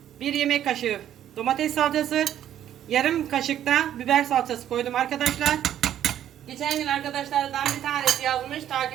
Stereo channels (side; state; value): left; quieter; 11.0 dB